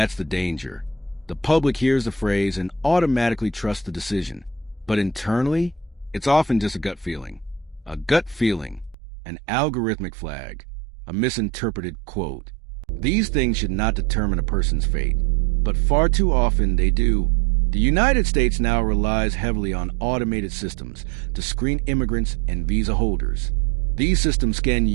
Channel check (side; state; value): left; drops out; at 9.0 s